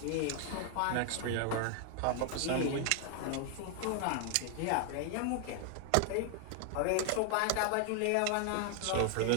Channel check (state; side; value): different; both; correlation 0.00